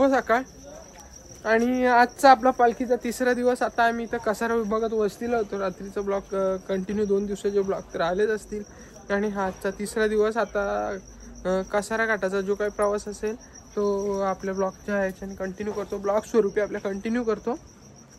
सकाळ. आणि आजचा आपला पालखीचा तिसरा दिवस. आता आम्ही इथं कसारा विभागात वस्तीला होतो. रात्रीचा ब्लॉक कंटिन्यू 2 दिवसाचे ब्लॉक तर आलेच असतील. आणि हा आजचा तिसरा दिवस. आता कसारा घाटाचा जो काही प्रवास असेल तो आपल्या ब्लॉकच्या ह्याच्याने कंटिन्यू करतो, ब्लॉक स्वरूपी आपल्या कंटिन्यू करतो.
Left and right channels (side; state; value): both; identical; correlation 1.00